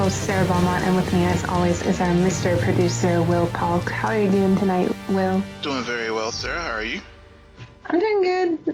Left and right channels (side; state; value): both; identical; correlation 1.00